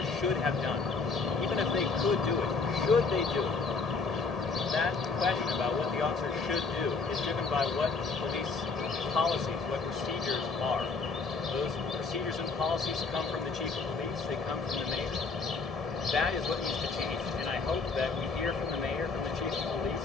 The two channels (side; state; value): right; quieter; 4.4 dB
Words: should have done? Even if they could do it, should they do it? That question about what the officer should do is driven by what police policies, what procedures are. Those procedures and policies come from the chief of police, they come from the mayor. That is what needs to change, and I hope that we hear from the mayor, from the chief of